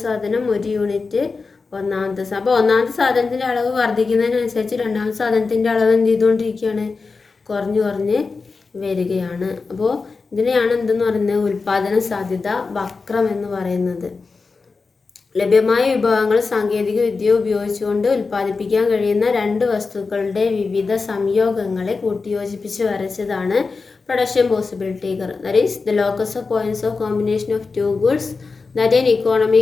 സാധനം, 1 യൂണിറ്റ് ഒന്നാമത്തെ സാധനം. അപ്പോൾ ഒന്നാമത്തെ സാധനത്തിൻ്റെ അളവ് വർദ്ധിക്കുന്നതിനനുസരിച്ച് രണ്ടാമത്തെ സാധനത്തിൻ്റെ അളവ് എന്ത് ചെയ്തുകൊണ്ടിരിക്കുകയാണ്? കുറഞ്ഞ് വരികയാണ്. അപ്പോൾ ഇതിനെയാണ് എന്തെന്ന് പറയുന്നത്? ഉൽപാദന സാധ്യത വക്രം എന്ന് പറയുന്നത്. ലഭ്യമായ വിഭവങ്ങൾ സാങ്കേതിക വിദ്യ ഉപയോഗിച്ചുകൊണ്ട് ഉൽപ്പാദിപ്പിക്കാൻ കഴിയുന്ന 2 വസ്തുക്കളുടെ വിവിധ സംയോഗങ്ങളെ കൂട്ടിയോജിപ്പിച്ച് വരച്ചതാണ് production possibility curve. That is the locus of points of combination of 2 goods that an economy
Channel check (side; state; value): right; quieter; 4.3 dB